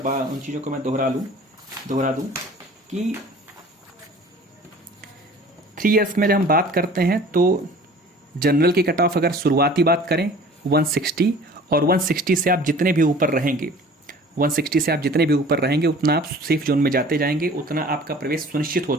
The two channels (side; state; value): both; normal; correlation 0.47